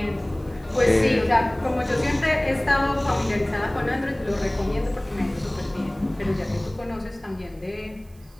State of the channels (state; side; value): noise; right; hiss, 30 dB below the sound